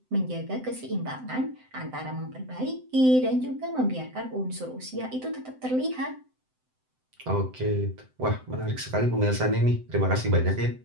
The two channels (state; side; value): late; left; 7.8 ms